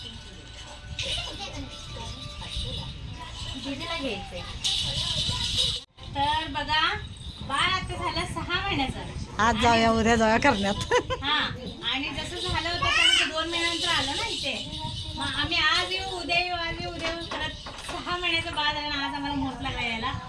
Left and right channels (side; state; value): both; identical; correlation 1.00